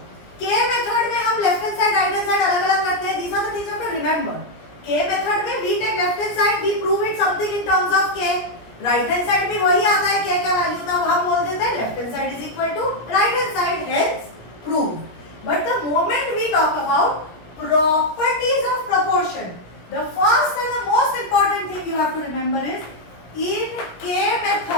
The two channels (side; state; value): right; late; 17 ms